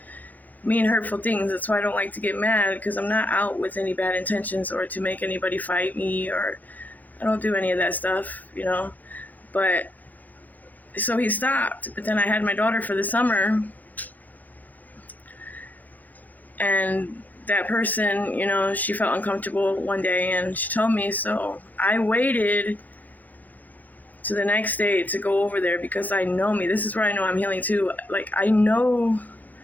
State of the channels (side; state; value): right; late; 0.082 ms